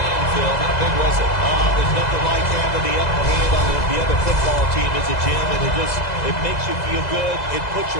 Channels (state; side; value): late; right; 2.0 ms